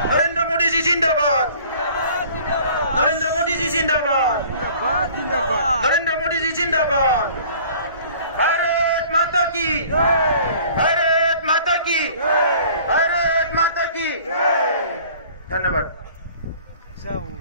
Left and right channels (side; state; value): both; inverted; correlation -0.50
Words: नरेंद्र मोदी जी जिंदाबाद, नरेंद्र मोदी जी जिंदाबाद, नरेंद्र मोदी जी जिंदाबाद। भारत माता की, भारत माता की, भारत माता की। धन्यवाद।